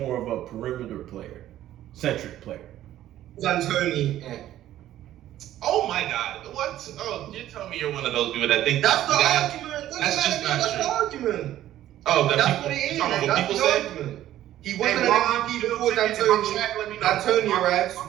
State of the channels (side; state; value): left; quieter; 13.0 dB